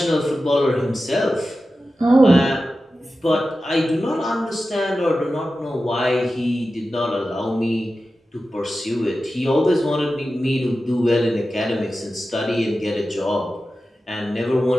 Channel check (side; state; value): both; normal; correlation 0.93